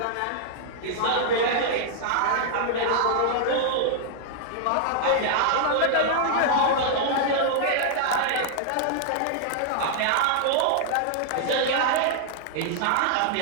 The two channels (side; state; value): both; different; correlation -0.01